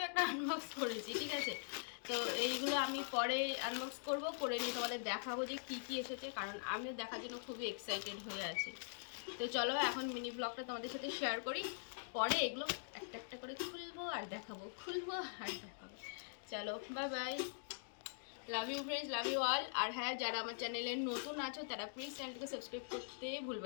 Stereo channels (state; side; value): silent; right; digital silence